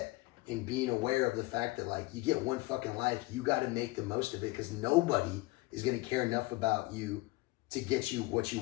and being aware of the fact that like you get one fucking life, you got to make the most of it because nobody is going to care enough about you to get you what you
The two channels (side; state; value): right; quieter; 22.0 dB